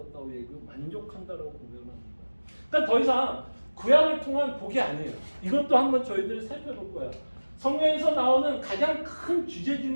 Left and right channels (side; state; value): both; inverted; correlation -1.00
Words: 얘기하고 만족한다라고 고백합니다. 그러니까 더 이상 구약을 통한 복이 아니에요. 이것도 한번 저희들이 살펴볼 거예요. 성경에서 나오는 가장 큰 주제 중에